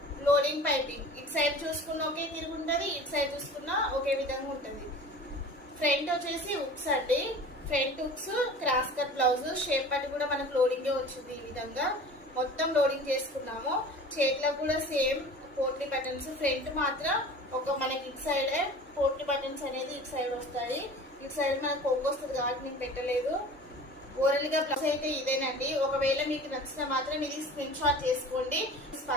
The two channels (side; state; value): both; normal; correlation 0.41